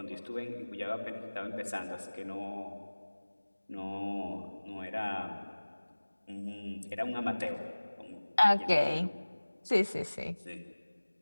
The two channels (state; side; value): inverted; both; correlation -1.00